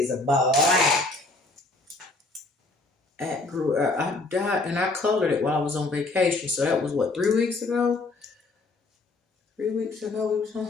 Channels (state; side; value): quieter; right; 3.2 dB